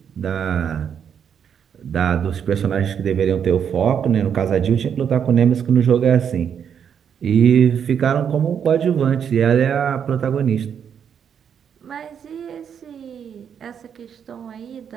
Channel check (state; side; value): quieter; left; 7.9 dB